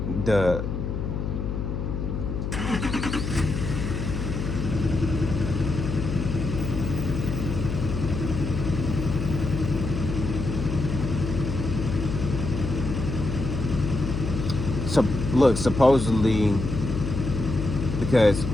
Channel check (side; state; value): left; noise; hum, 3 dB below the sound